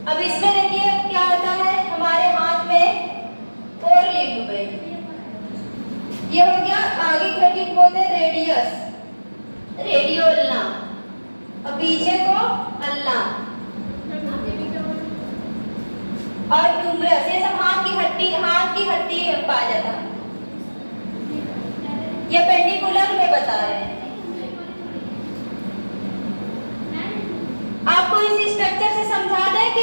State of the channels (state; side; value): inverted; both; correlation -1.00